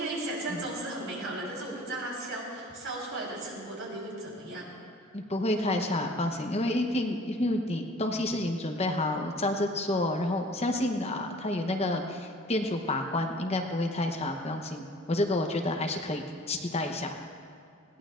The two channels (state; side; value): normal; both; correlation 0.49